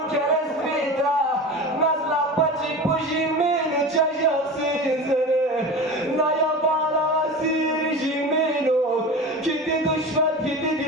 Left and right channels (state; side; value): normal; both; correlation 0.31